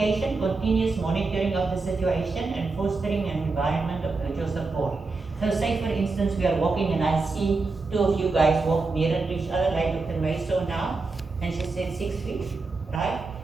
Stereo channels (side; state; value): left; quieter; 3.9 dB